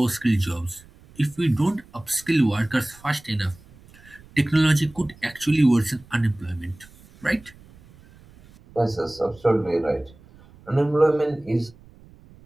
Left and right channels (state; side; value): noise; right; rumble, 25 dB below the sound